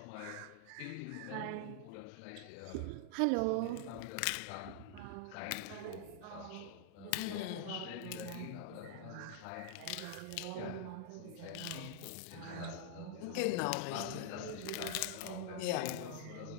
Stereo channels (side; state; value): both; different; correlation 0.00